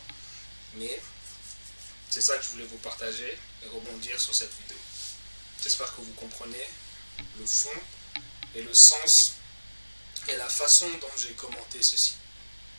Mais c'est ça que je voulais vous partager et rebondir sur cette vidéo. J'espère que vous comprenez le fond et le sens et la façon dont j'ai commenté ceci.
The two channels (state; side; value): inverted; both; correlation -1.00